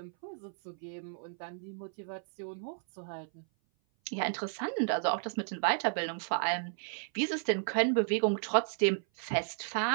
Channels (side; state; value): left; silent; 56 dB below the other